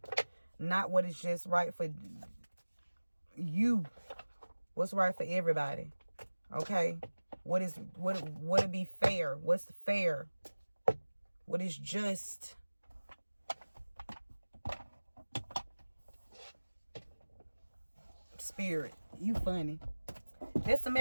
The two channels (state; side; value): inverted; both; correlation -1.00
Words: Not what is just right for you. What's right for everybody. Okay? What would be fair? What's fair? What is just? Spirit, you funny. That's the